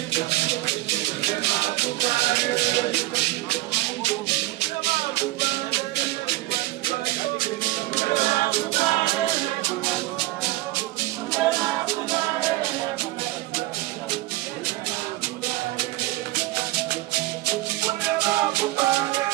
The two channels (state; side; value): quieter; left; 18.4 dB